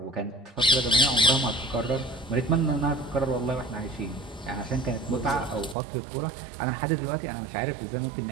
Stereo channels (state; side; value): drops out; left; at 5.8 s